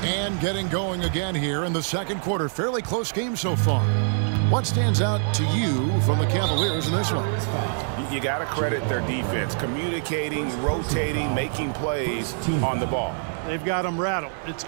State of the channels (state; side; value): silent; left; digital silence